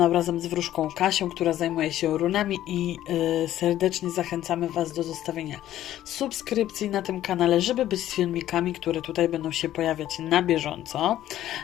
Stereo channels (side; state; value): right; quieter; 12.9 dB